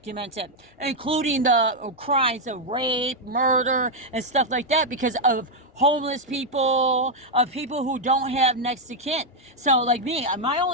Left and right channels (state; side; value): normal; both; correlation 0.00